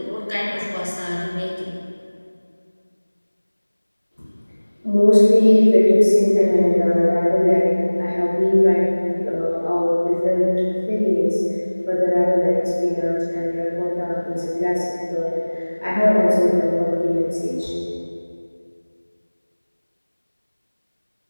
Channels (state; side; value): inverted; both; correlation -1.00